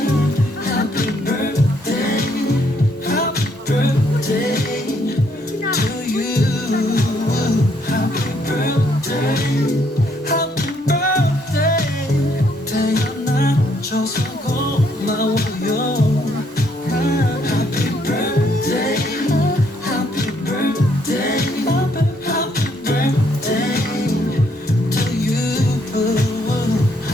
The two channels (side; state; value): both; normal; correlation 0.71